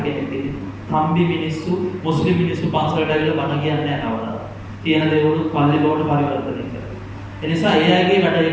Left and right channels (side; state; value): both; identical; correlation 1.00